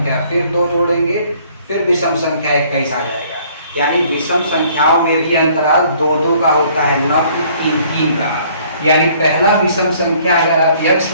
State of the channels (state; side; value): inverted; both; correlation -0.59